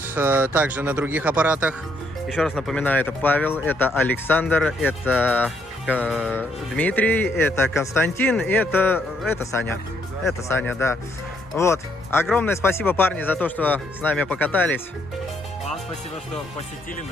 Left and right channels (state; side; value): normal; both; correlation 0.72